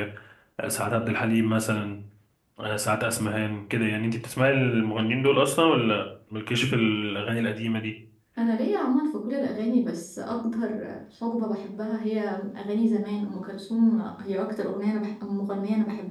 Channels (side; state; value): both; identical; correlation 1.00